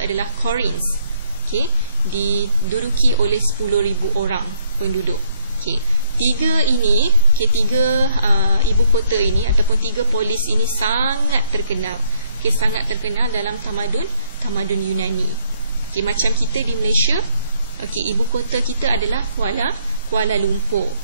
adalah Corinth, okay, diduduki oleh 10,000 orang penduduk. Okay, 3 ini, okay, 3 ibu kota ini ataupun 3 polis ini sangat terkenal, okay, sangat terkenal dalam tamadun Yunani. Okay, macam kita di Malaysia, okay, ibu kota kita adalah Kuala Lumpur.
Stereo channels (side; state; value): both; inverted; correlation -0.68